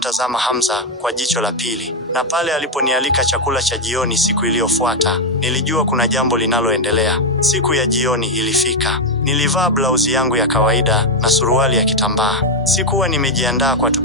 Hamza kwa jicho la pili, na pale aliponialika chakula cha jioni siku iliyofuata, nilijua kuna jambo linaloendelea. Siku ya jioni ilifika. Nilivaa blauzi yangu ya kawaida na suruali ya kitambaa. Sikuwa nimejiandaa kwa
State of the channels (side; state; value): both; normal; correlation 0.03